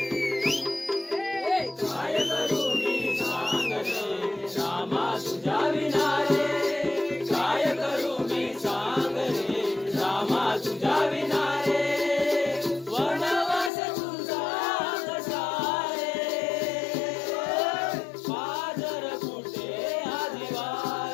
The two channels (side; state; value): right; drops out; at 13.7 s